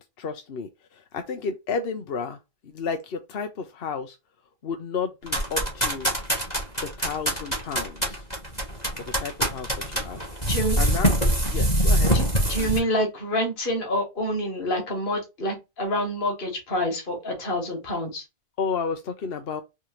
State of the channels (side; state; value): right; late; 2.0 ms